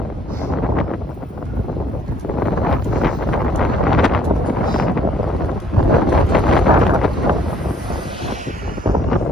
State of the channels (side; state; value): both; normal; correlation 0.63